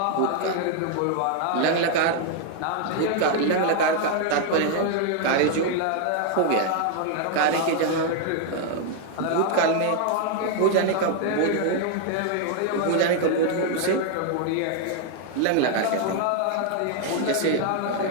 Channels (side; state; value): both; different; correlation 0.00